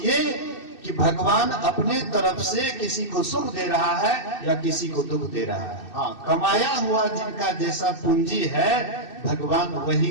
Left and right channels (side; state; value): right; late; 2.6 ms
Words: कि भगवान अपने तरफ से किसी को सुख दे रहा है या किसी को दुख दे रहा है। हाँ, कमाया हुआ जिनका जैसा पूंजी है, भगवान